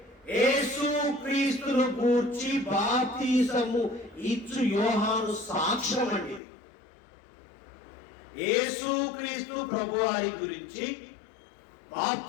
యేసు క్రీస్తును గూర్చి బాప్తిసము ఇచ్చు యోహాను సాక్ష్యం అండి. యేసు క్రీస్తు ప్రభువారి గురించి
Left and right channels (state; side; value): drops out; right; at 6.4 s